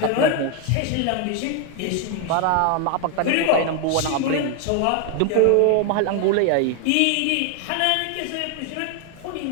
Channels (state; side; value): different; both; correlation 0.01